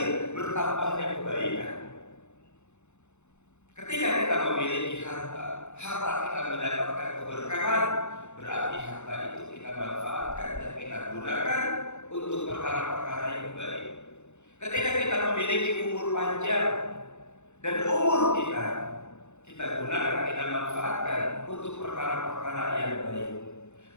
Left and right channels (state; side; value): late; right; 0.83 ms